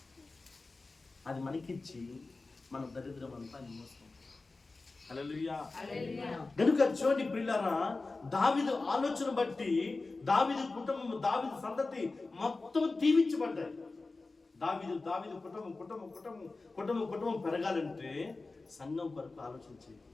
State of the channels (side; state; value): right; quieter; 3.6 dB